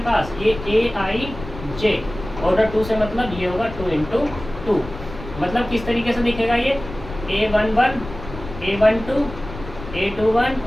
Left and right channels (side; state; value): left; noise; rumble, 12 dB below the sound